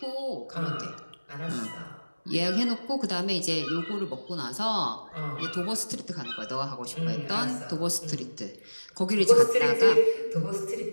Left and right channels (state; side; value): inverted; both; correlation -1.00